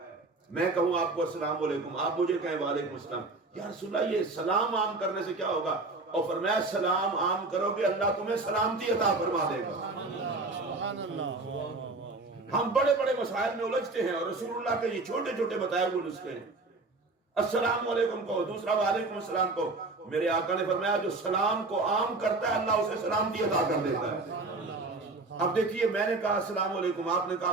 میں کہوں آپ کو السلام علیکم، آپ مجھے کہیں وعلیکم السلام. یا رسول اللہ یہ سلام عام کرنے سے کیا ہوگا؟ اور فرمایا سلام عام کرو گے اللہ تمہیں سلامتی عطا فرما دے گا. ہم بڑے بڑے مسائل میں الجھتے ہیں اور رسول اللہ کے یہ چھوٹے چھوٹے بتائے ہوئے نسخے ہیں. السلام علیکم کہو، دوسرا وعلیکم السلام کہو. میرے آقا نے فرمایا جو سلام کو عام کرتا ہے اللہ اسے سلامتی عطا کر دیتا ہے. اب دیکھیے میں نے کہا السلام علیکم، آپ نے کہا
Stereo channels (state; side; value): quieter; left; 3.4 dB